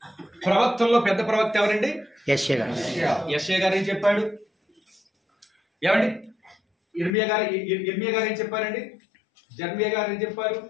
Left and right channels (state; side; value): drops out; right; at 7.1 s